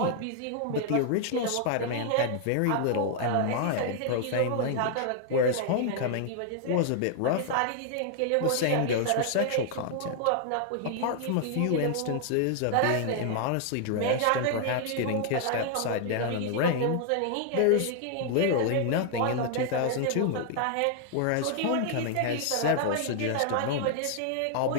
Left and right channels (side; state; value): both; different; correlation 0.00